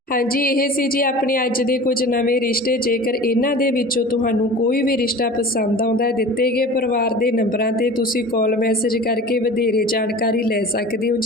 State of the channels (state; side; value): normal; both; correlation 0.38